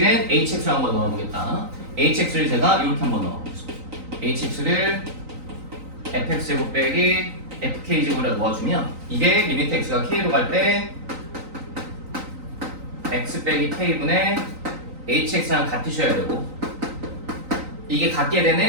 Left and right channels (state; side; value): late; left; 3.9 ms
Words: hx를 한번 넣어보겠다. hx를 제가 이렇게 한번 넣어보겠습니다. hx를 fx제곱 빼기 fk제곱에 넣어주면 이게 리미트 x가 k로 갈 때 x 빼기 k분의 hx랑 같으셔야 되고 이게 같게